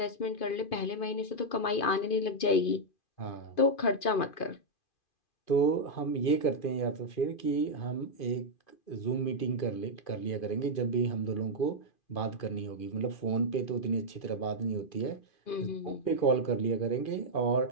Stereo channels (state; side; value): late; right; 2.5 ms